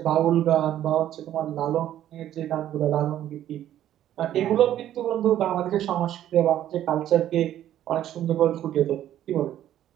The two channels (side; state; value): left; quieter; 11.9 dB